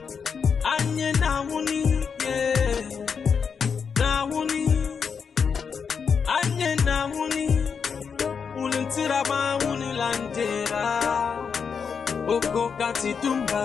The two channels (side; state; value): right; quieter; 6.3 dB